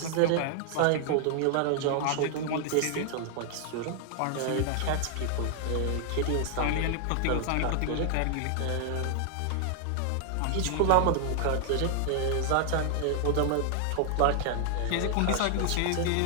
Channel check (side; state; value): both; different; correlation 0.00